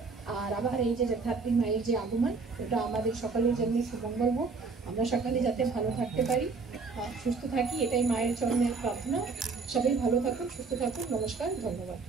আর আবার এই যে যথার্থী মায়ের যে আগমন, ওটা আমাদের সকলের জন্য সুমঙ্গল হোক, আমরা সকালে যাতে ভালো থাকতে পারি, সুস্থ থাকি, এটাই মায়ের চরণের প্রার্থনা। সবাই ভালো থাকুন, সুস্থ থাকুন। নমস্কার, ধন্যবাদ।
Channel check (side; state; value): left; quieter; 4.4 dB